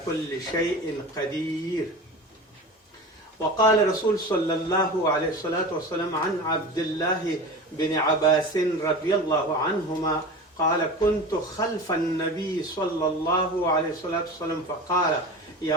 كل شيء قدير. وقال رسول صلى الله عليه الصلاة والسلام عن عبد الله بن عباس رضي الله عنهما قال: كنت خلف النبي صلى الله عليه الصلاة والسلام فقال:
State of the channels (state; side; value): normal; both; correlation 0.32